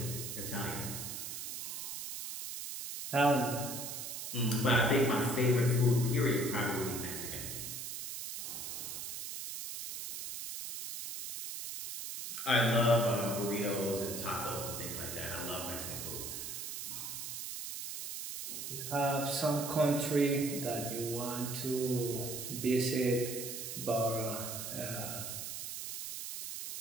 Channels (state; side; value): noise; right; hiss, 6 dB below the sound